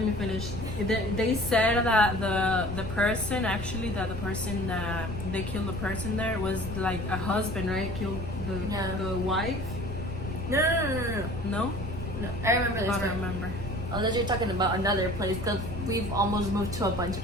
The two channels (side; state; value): right; noise; rumble, 8 dB below the sound